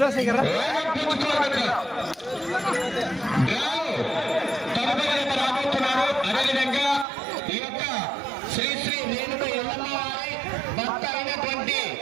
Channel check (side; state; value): left; drops out; at 7.1 s